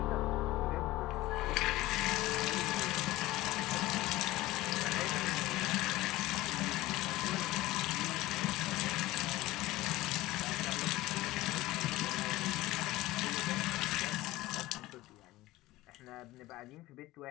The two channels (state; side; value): quieter; right; 17.9 dB